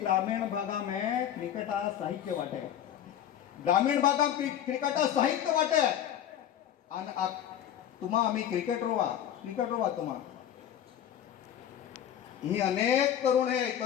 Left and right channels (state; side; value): quieter; right; 10.3 dB